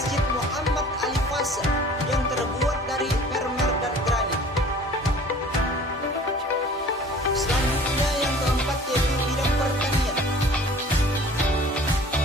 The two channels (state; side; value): normal; both; correlation 0.47